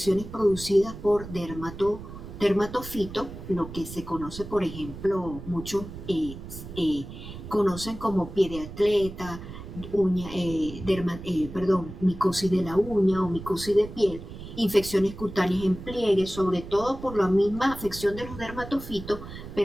producidas por dermatofito, lo que se conoce, por ejemplo, muchos conocen como pie de atleta, micosis de la uña o micosis de piel, infecciones cutáneas en pliegue, sobre todo por la misma afección de los dermatofitos,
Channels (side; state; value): right; noise; rumble, 12 dB below the sound